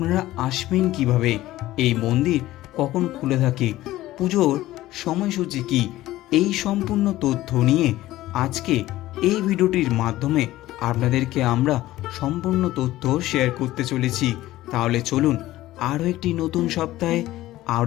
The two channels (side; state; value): right; quieter; 15.9 dB